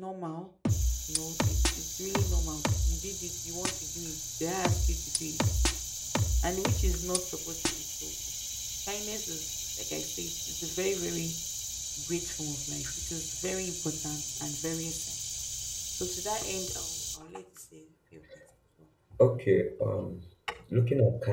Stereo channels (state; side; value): identical; both; correlation 1.00